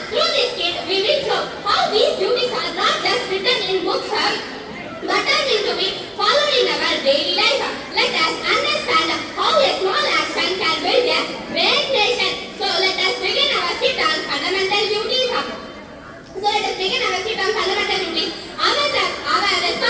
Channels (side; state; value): both; identical; correlation 1.00